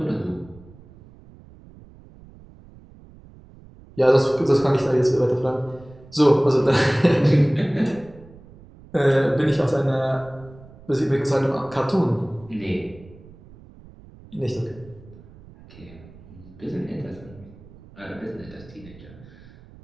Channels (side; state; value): right; noise; rumble, 22 dB below the sound